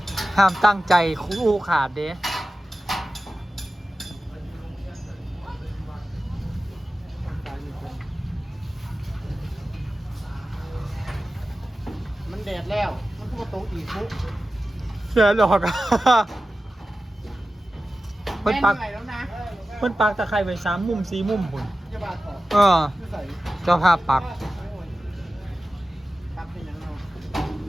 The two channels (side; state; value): both; normal; correlation 0.95